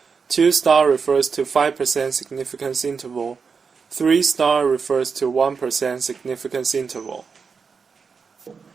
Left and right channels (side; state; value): left; quieter; 5.5 dB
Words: 2 star refers to 5% significance interval, 3 star refers to 1% significance interval.